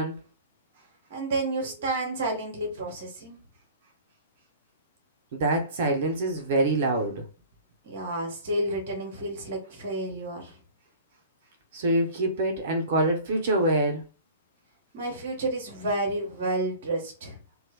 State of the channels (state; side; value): inverted; both; correlation -0.44